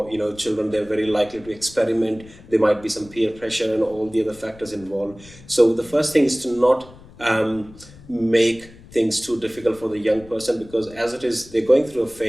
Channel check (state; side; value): noise; left; rumble, 21 dB below the sound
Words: children, they're very likely to experiment. There might be some peer pressure and all the other factors involved. So the first thing is to not make things too difficult for the young person, because as it is, they're going through a